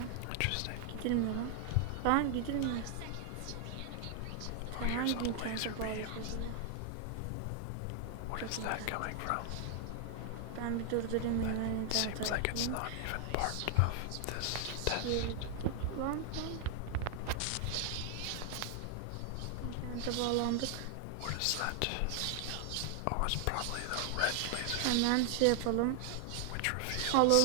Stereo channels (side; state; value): both; different; correlation 0.00